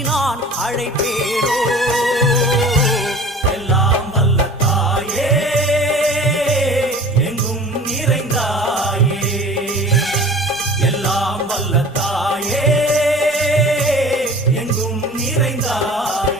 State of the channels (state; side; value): normal; both; correlation 0.43